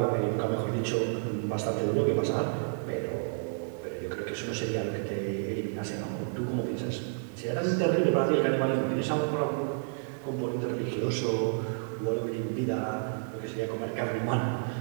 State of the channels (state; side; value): silent; left; digital silence